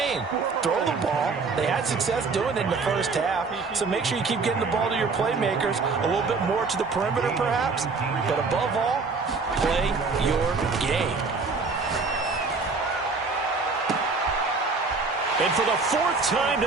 Throw the ball. They had success doing it in the first half, so make sure you keep getting the ball to your playmakers, a little bit more to the perimeter perhaps, but above all, play your game. And for the 4th time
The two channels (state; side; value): quieter; left; 4.3 dB